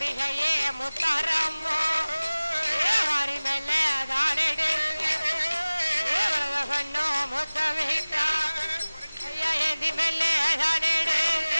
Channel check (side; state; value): both; inverted; correlation -1.00